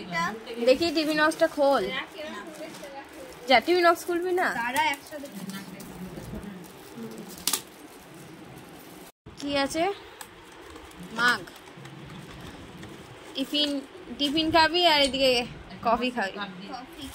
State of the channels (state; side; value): identical; both; correlation 1.00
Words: দেখি টিভি নক্সটা খোল। যা, টিভি নক্স খুলবি না? তারা একসাথে কি আছে? মাগ। টিফিন খাবি আর এদিকে কফি খাবি।